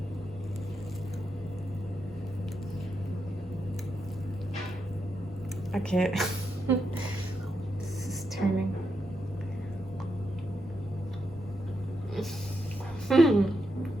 Okay, this is turning.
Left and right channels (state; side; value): normal; both; correlation 0.84